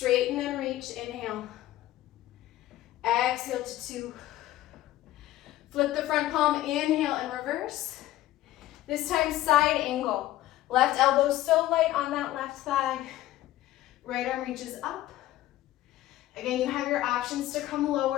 and reach. Inhale. Exhale to 2. Flip the front palm. Inhale and reverse. This time side angle. Left elbow so light on that left thigh. Right arm reaches up. Again, you have your options to come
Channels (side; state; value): right; quieter; 14.9 dB